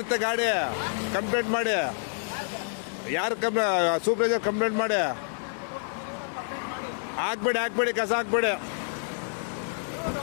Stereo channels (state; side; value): silent; right; digital silence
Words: ಗಾಡಿ. ಕಂಪ್ಲೇಂಟ್ ಮಾಡಿ. ಯಾರು ಸೂಪರ್ವೈಸರ್ ಕಂಪ್ಲೇಂಟ್ ಮಾಡಿ. ಹಾಕ್ಬೇಡಿ ಕಸ ಹಾಕ್ಬೇಡಿ.